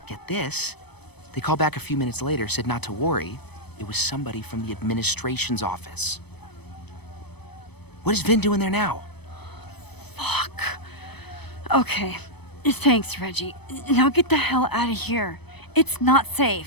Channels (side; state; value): right; late; 0.98 ms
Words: get this, they called back a few minutes later, said not to worry. It was somebody from the administration's office. What is Vin doing there now? Fuck. Okay. Thanks, Reggie. Now get the hell out of here. It's not